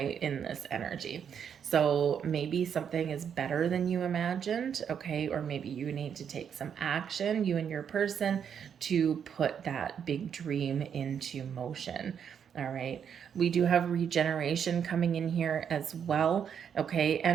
in this energy. So maybe something is better than you imagined, okay, or maybe you need to take some action, you and your person, to put that big dream into motion. All right. We do have regeneration coming in here as well. Okay.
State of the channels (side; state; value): left; quieter; 7.9 dB